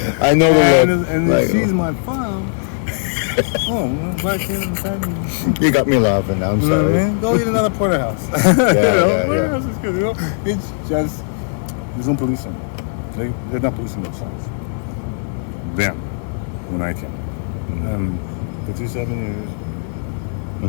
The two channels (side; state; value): right; silent; digital silence